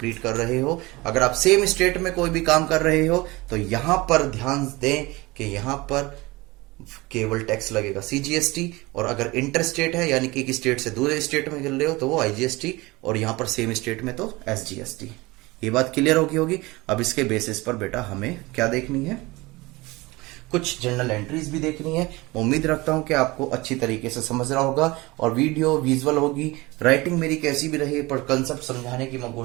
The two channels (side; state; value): left; quieter; 22.1 dB